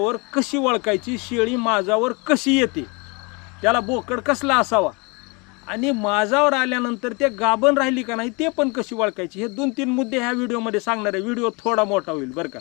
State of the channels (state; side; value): quieter; right; 29.6 dB